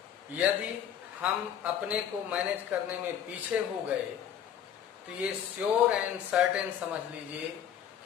यदि हम अपने को मैनेज करने में पीछे हो गए तो ये श्योर एंड सर्टेन समझ लीजिए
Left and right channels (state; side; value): quieter; right; 9.4 dB